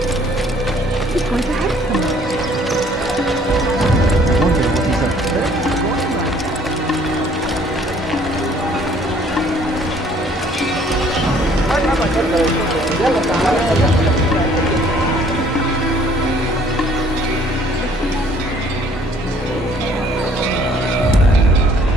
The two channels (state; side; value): normal; both; correlation 0.59